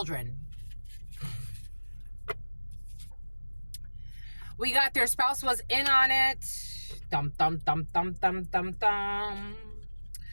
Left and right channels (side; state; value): both; inverted; correlation -1.00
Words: We got their spouse was in on it. Dum, dum, dum, dum, dum, dum, dum.